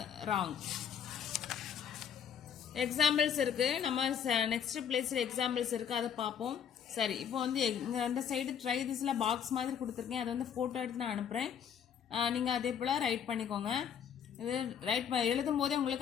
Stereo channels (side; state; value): right; quieter; 8.2 dB